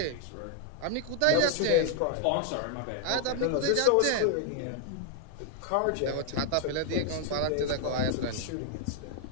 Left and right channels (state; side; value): different; both; correlation 0.00